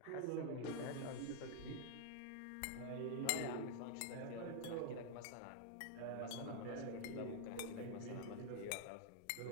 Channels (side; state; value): both; different; correlation 0.00